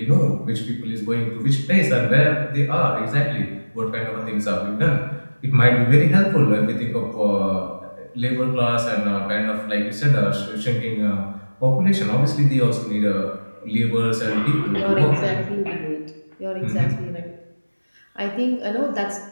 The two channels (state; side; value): inverted; both; correlation -1.00